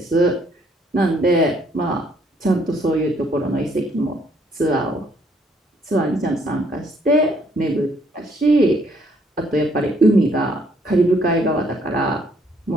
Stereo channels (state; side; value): normal; both; correlation 0.67